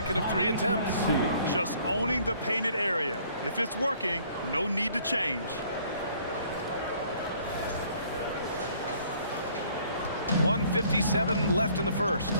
of 3 attempts. Just owning the painted area. If it's working, no need to change. 1:57 left in the first.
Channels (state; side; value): inverted; both; correlation -0.59